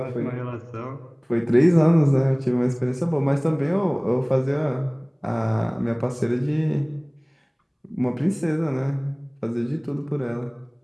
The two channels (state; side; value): identical; both; correlation 1.00